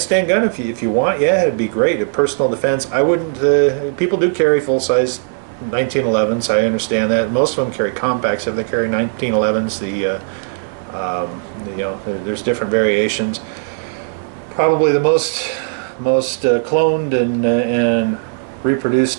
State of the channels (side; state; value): left; silent; digital silence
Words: gun, if you want, yeah, it'd be great. A personal defense. I wouldn't. People do carry full-size 1911s. I understand that. Most of them carry compacts. If they carry 1911s, you know, there's different variations. Probably the most cloned and reproduced